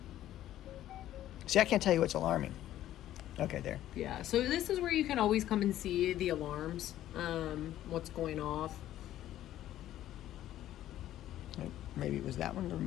See, I can't tell you what's alarming. Okay, there. Yeah. So this is where you can always come and see the alarms, what's going off. Maybe it was that one, the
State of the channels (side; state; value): right; quieter; 13.0 dB